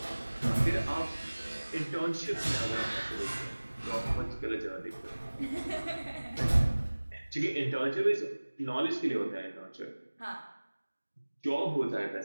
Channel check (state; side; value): inverted; both; correlation -1.00